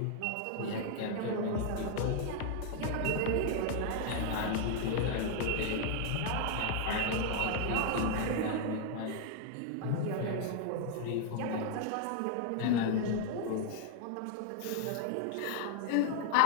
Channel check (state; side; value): different; both; correlation 0.00